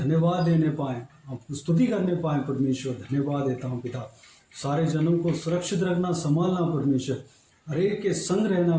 देने पाएँ, आपको स्तुति करने पाएँ परमेश्वर। धन्यवाद देता हूँ पिता। सारे जनों को सुरक्षित रखना, संभालना परमेश्वर। हर एक के संग रहना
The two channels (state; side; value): identical; both; correlation 1.00